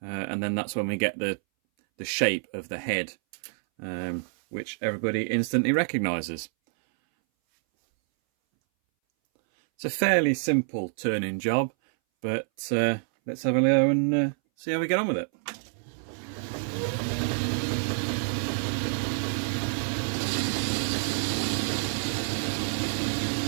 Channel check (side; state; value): left; silent; 60 dB below the other